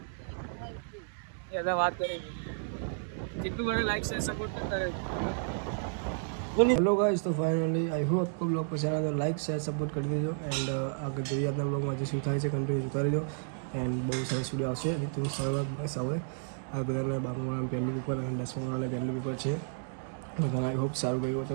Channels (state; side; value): silent; left; 56 dB below the other